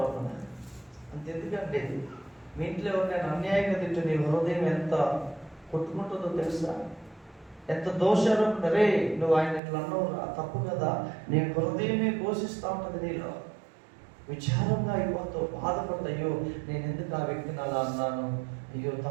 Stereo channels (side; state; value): left; drops out; at 9.6 s